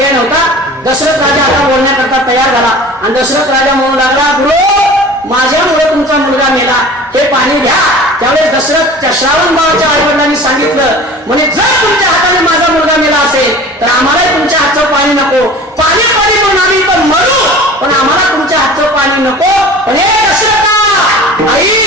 नव्हता. दशरथ राजा आता बोलण्याकरता तयार झाला आणि दशरथ राजा म्हणू लागला, गुरु माझ्यामुळे तुमचा मुलगा मेला, हे पाणी घ्या. त्यावेळेस दशरथ श्रावण बाळाच्या आईवडिलांनी सांगितलं, म्हणे जर तुमच्या हाताने माझा मुलगा मेला असेल तर आम्हालाही तुमच्या हातचं पाणी नको. पाणी पाणी म्हणून आम्ही पण मरू, पण आम्हाला तुमच्या हातचं पाणी नको. पण हे दशरथा आई,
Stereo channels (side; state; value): both; normal; correlation 0.41